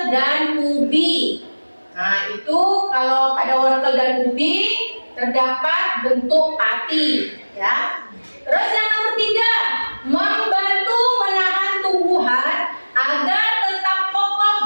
dan ubi. Nah, itu kalau pada wortel dan ubi terdapat bentuk pati ya. Terus yang nomor 3, membantu menahan tumbuhan agar tetap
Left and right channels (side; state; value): both; inverted; correlation -1.00